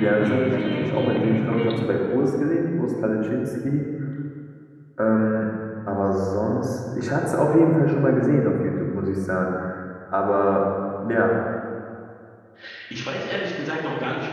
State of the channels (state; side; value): identical; both; correlation 1.00